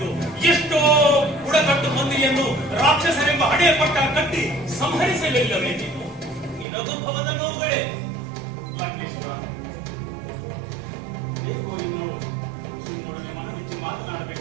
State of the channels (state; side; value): drops out; left; at 6.7 s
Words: ಎಷ್ಟೋ ಬುಡಕಟ್ಟು ಮಂದಿಯನ್ನು ರಾಕ್ಷಸರೆಂಬ ಹಣೆ ಪಟ್ಟ ಕಟ್ಟಿ ಸಂಹರಿಸಲಿಲ್ಲವೇ ನೀನು? ನಿನಗಭವದ ನೋವುಗಳೇ. ಲಂಕೇಶ್ವರ, ಹೇಗೋ ನಿನ್ನೊಡನೆ ಮನಬಿಚ್ಚಿ